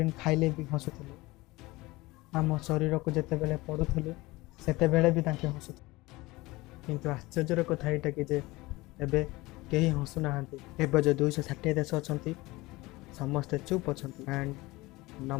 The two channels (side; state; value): right; quieter; 21.1 dB